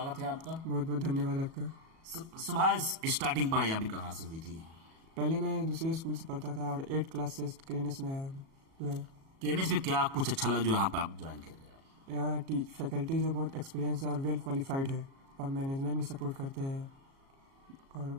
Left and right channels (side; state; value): left; late; 37 ms